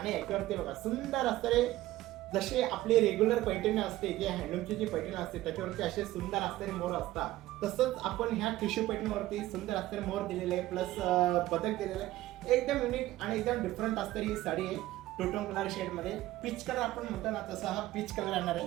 याच्यावरती बघा सुंदर असणारे, जसे आपली रेग्युलर पैठणी असते, जे हँडलूमची जी पैठणी असते त्याच्यावरती असे सुंदर असणारे मोर असतात, तसंच आपण ह्या टिश्यू पैठणीवरती सुंदर असणारे मोर दिलेले आहे, प्लस बदक दिलेले आहे। एकदम युनिक आणि एकदम डिफरंट असणारी ही साडी आहे, टोटोन कलर शेड मध्ये। पीच कलर आपण म्हणतो ना, तसा हा पीच कलर येणार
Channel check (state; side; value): quieter; left; 16.1 dB